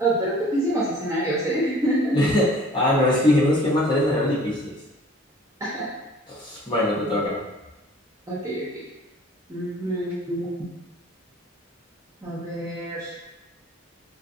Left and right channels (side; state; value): both; normal; correlation 0.50